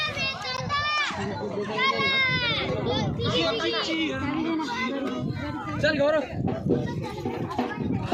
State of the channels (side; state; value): both; identical; correlation 1.00